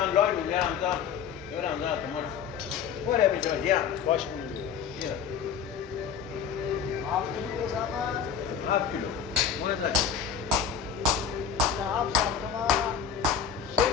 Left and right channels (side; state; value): right; quieter; 7.5 dB